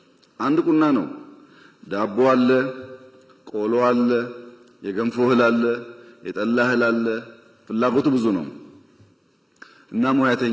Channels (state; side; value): identical; both; correlation 1.00